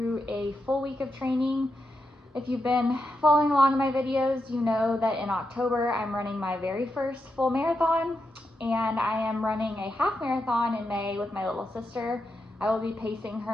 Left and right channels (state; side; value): normal; both; correlation 0.86